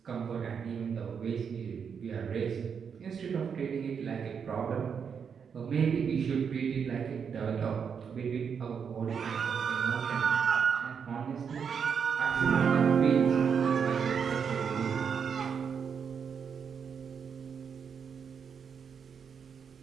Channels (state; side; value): quieter; left; 6.8 dB